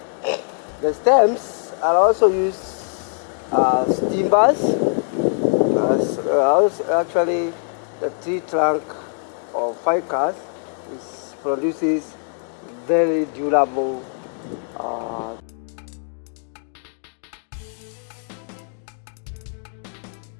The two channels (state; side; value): silent; right; 61 dB below the other